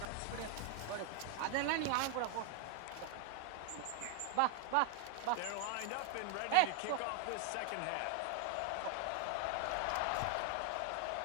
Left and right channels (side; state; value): both; different; correlation 0.00